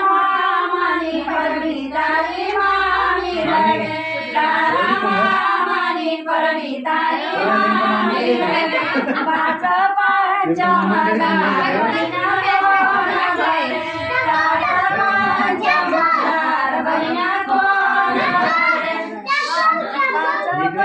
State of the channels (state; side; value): identical; both; correlation 1.00